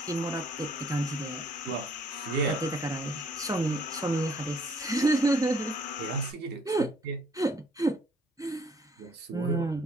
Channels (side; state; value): both; normal; correlation 0.61